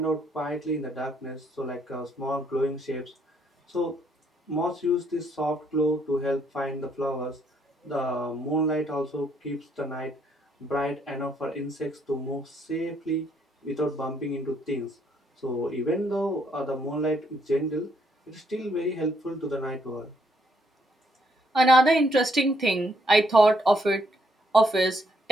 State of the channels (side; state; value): both; normal; correlation 0.71